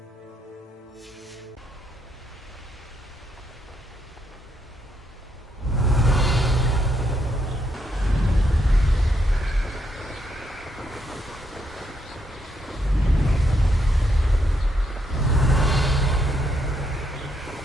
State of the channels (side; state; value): both; normal; correlation 0.77